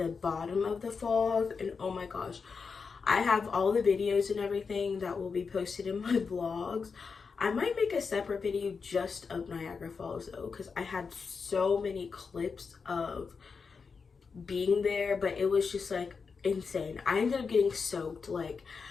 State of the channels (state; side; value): quieter; right; 5.3 dB